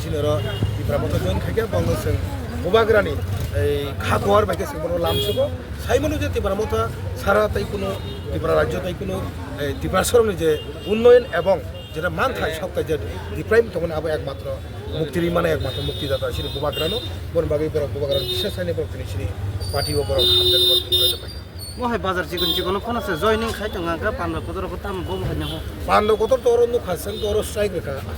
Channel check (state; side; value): identical; both; correlation 1.00